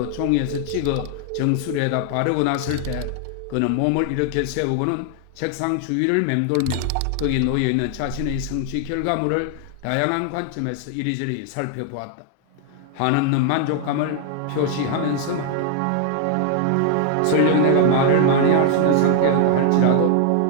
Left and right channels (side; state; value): both; different; correlation 0.00